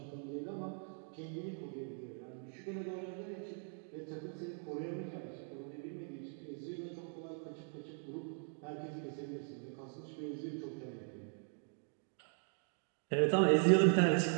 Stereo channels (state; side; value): silent; left; 51 dB below the other